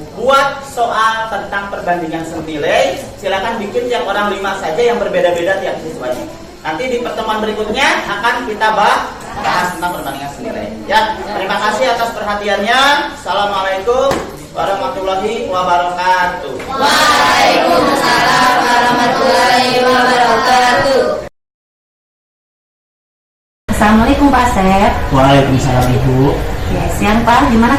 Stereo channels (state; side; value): identical; both; correlation 1.00